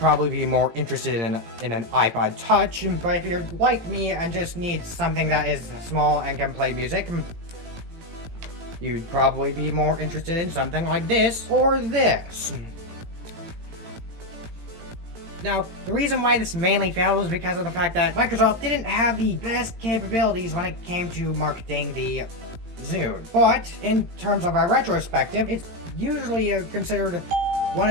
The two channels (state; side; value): late; left; 18 ms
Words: be more interested in an iPod Touch. But if you're like me and just need something that is small and can play music, you'd probably be more interested in something like this or this. Now, the reason why this mainly failed was because of the fact that Microsoft didn't have the best capabilities when it came to marketing the Zune. But in terms of our retrospective, it's usually considered one